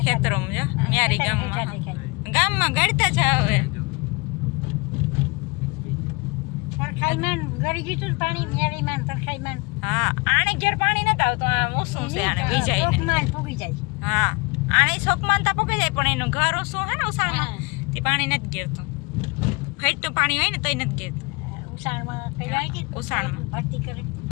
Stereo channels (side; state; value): right; quieter; 27.5 dB